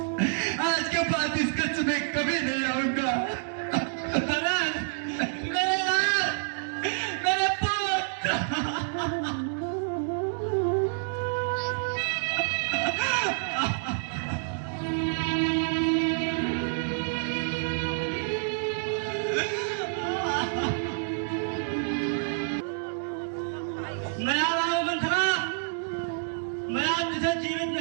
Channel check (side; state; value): left; silent; digital silence